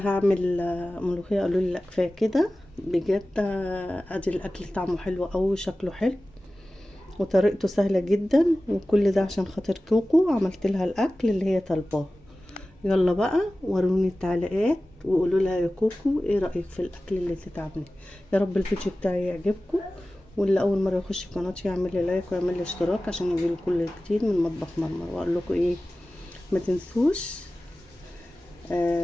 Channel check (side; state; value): both; normal; correlation 0.96